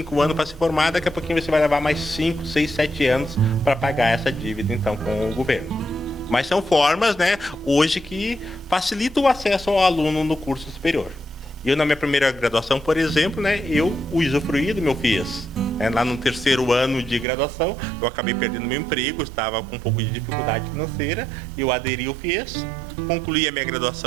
anos para se formar, daqui a pouquinho você vai levar mais 5, 6, 7 anos para pagar essa dívida então com o governo. Mas são formas, né, hoje que facilitam o acesso ao aluno no curso superior. Eu, na minha primeira graduação, por exemplo, né, eu usufruí do meu FIES. Lá no 3º ano de graduação, eu acabei perdendo meu emprego, estava com um pouco de dificuldade financeira, eu aderi ao FIES, concluí a minha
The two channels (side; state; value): left; drops out; at 17.2 s